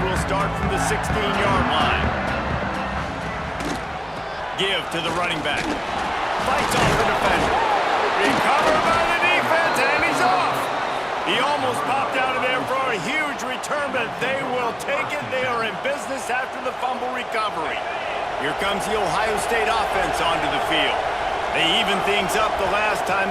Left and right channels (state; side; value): identical; both; correlation 1.00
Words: will start from the 16-yard line. Give to the running back. Fights off the defender. Recovered by the defense, and he's off. He almost popped out of there for a huge return, but they will take it. They are in business after the fumble recovery. Here comes the Ohio State offense onto the field. They evened things up the last time